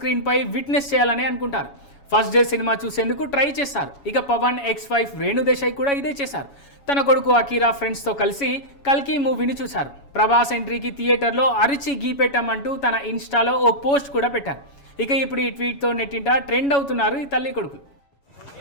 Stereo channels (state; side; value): late; right; 7.1 ms